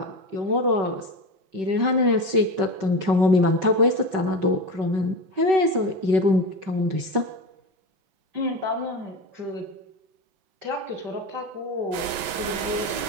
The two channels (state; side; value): late; left; 5.3 ms